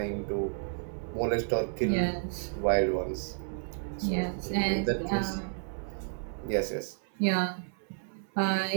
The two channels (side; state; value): left; silent; 55 dB below the other